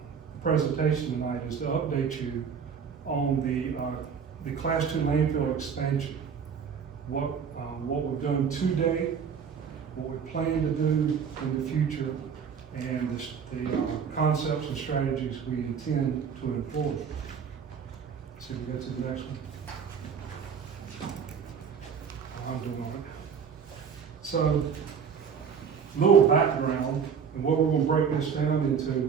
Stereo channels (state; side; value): quieter; left; 6.8 dB